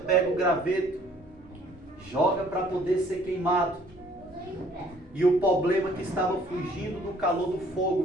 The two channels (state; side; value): normal; both; correlation 0.58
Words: o graveto, joga para poder ser queimado. E o problema que estava fugindo do calor do